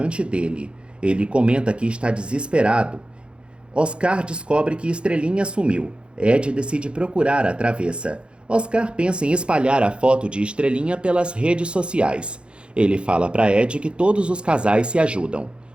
dele. Ele comenta que está desesperado. Oscar descobre que Estrelinha sumiu. Ed decide procurar a travessa. Oscar pensa em espalhar a foto de Estrelinha pelas redes sociais. Ele fala para Ed que todos os casais se ajudam.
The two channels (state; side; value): late; left; 0.056 ms